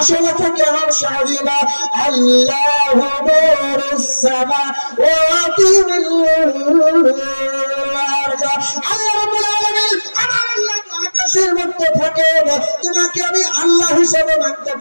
থেকে আরশ আজিম, আল্লাহু নূরুস সামাওয়াতি ওয়াল আরদ, আল্লাহ রাব্বুল আলামিন আমার আল্লাহ আকাশের মধ্যে থাকে, তোমাকে আমি আল্লাহ হিসাবে মানতে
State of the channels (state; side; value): inverted; both; correlation -1.00